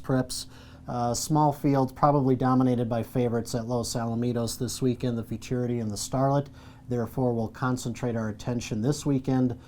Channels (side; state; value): both; identical; correlation 1.00